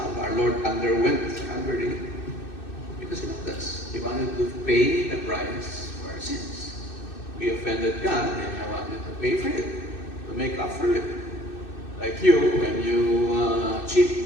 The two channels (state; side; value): late; right; 2.6 ms